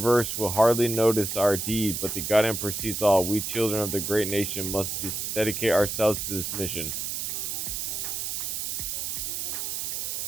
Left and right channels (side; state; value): right; noise; hiss, 3 dB below the sound